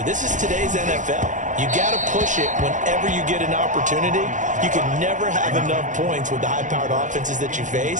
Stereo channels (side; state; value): left; late; 0.36 ms